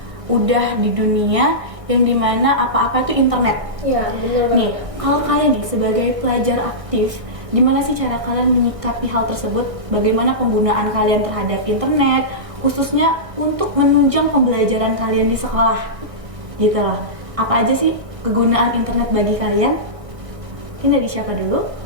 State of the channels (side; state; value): left; late; 1.6 ms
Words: udah di dunia yang dimana apa-apa itu internet. Iya, benar banget. Nih, kalau kalian nih sebagai pelajar aktif, gimana sih cara kalian menyikapi hal tersebut? Bagaimana penggunaan kalian terhadap internet, khususnya untuk menunjang pembelajaran kalian di sekolah? Gitu loh. Apa aja sih kegunaan internet bagi kalian? Mungkin dari siapa dulu?